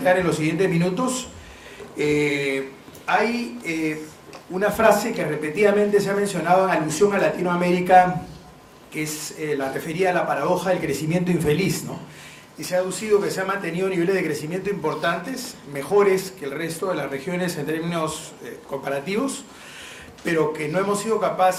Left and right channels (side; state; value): both; identical; correlation 1.00